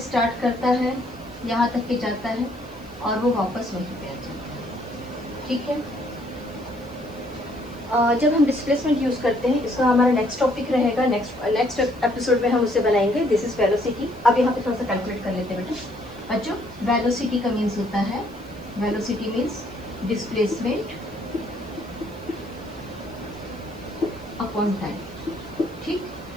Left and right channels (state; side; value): noise; left; hiss, 29 dB below the sound